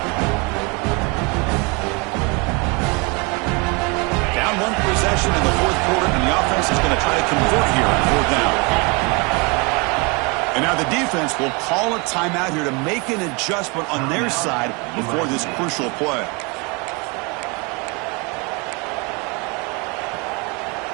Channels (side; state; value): left; quieter; 29.9 dB